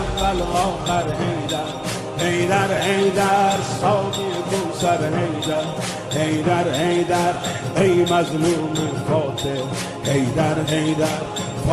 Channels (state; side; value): identical; both; correlation 1.00